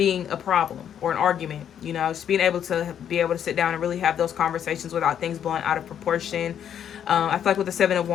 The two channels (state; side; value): quieter; right; 9.2 dB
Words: a problem or an argument. You know, just being able to sit down and really have those conversations without things blowing out of proportion. I feel like with the Seven of